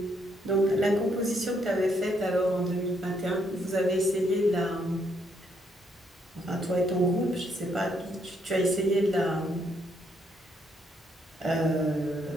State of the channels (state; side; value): normal; both; correlation 0.73